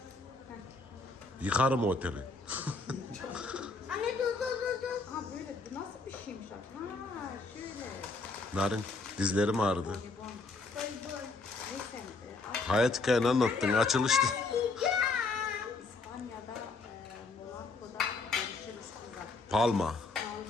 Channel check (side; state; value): right; quieter; 3.8 dB